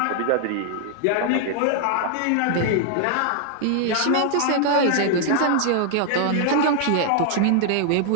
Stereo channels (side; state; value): both; different; correlation 0.00